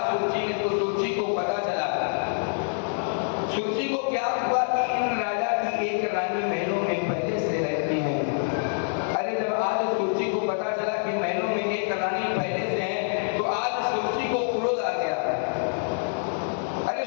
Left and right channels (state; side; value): silent; right; 61 dB below the other